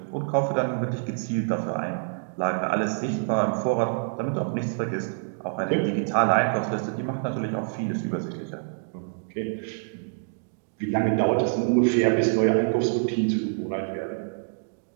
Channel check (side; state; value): left; silent; digital silence